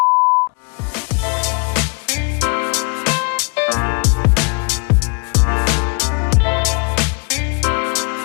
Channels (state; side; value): quieter; right; 34.3 dB